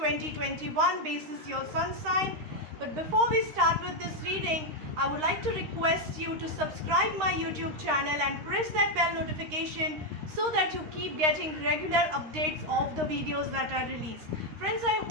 basis your sun sign. But before we start with this reading, I would like to request you to subscribe my YouTube channel and press that bell notification so that you keep getting regular updates of the videos that I release. Friends, I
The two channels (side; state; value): left; late; 13 ms